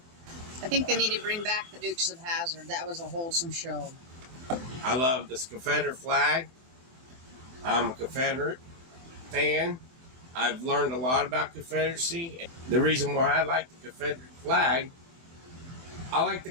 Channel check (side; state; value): left; late; 23 ms